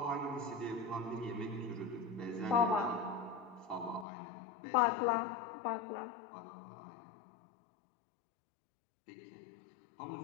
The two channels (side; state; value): right; drops out; at 4.0 s